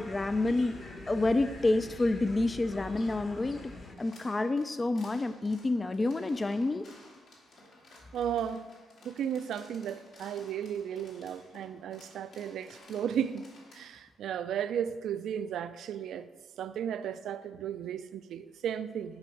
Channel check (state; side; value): normal; both; correlation 0.83